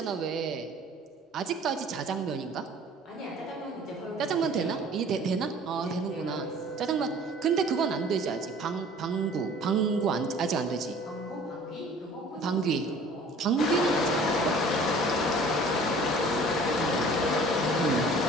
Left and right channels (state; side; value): normal; both; correlation 0.49